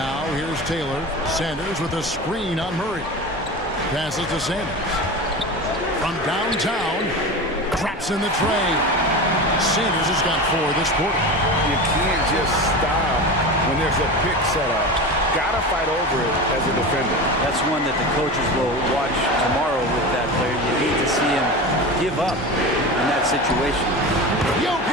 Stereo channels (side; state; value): both; normal; correlation 0.28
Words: here's Taylor. Sanders with a screen on Murray. Passes to Sanders. From downtown. Drops in the tray. Sanders has got 4 this quarter. You can't just stop when there's a pick set up. Gotta fight over it as a defender. That's one that the coaches will watch tomorrow with that player. You need to see him give up in that situation.